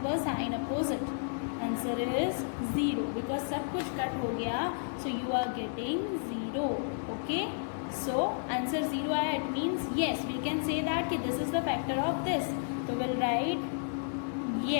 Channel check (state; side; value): silent; right; digital silence